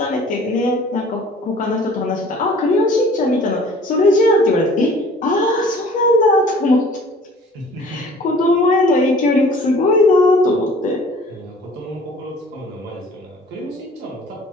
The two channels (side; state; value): both; normal; correlation 0.50